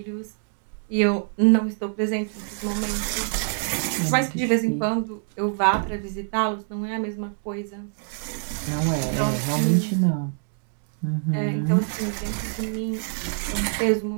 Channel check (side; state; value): left; silent; 58 dB below the other